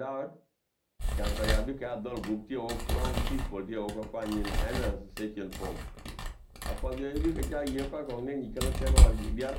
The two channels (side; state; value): both; identical; correlation 1.00